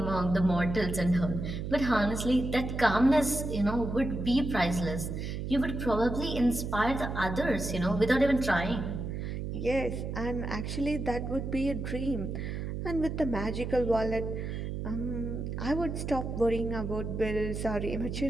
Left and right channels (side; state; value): right; noise; hum, 4 dB below the sound